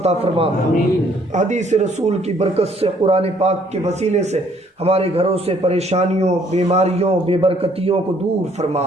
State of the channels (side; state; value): both; normal; correlation 0.63